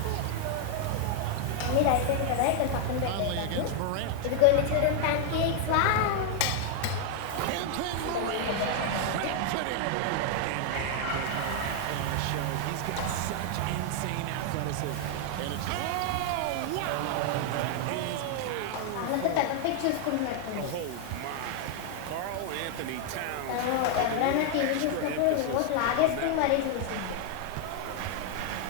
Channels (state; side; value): different; both; correlation 0.00